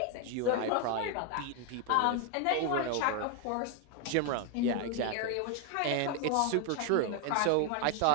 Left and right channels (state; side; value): different; both; correlation 0.01